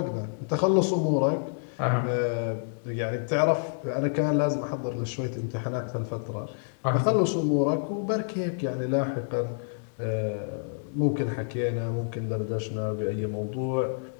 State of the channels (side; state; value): right; silent; digital silence